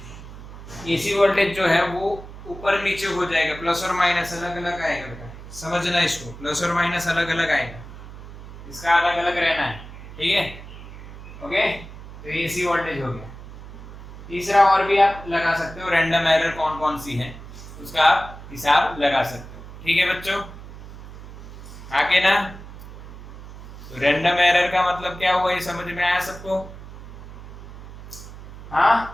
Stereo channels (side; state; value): right; noise; hum, 14 dB below the sound